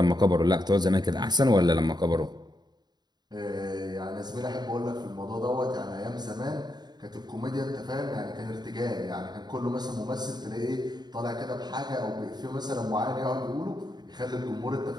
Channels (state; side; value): late; left; 0.20 ms